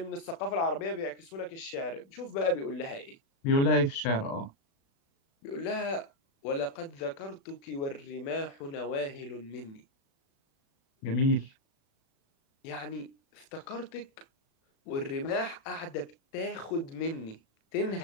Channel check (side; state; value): right; late; 36 ms